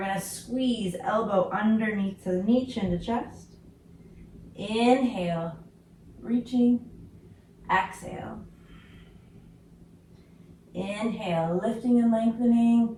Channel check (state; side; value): identical; both; correlation 1.00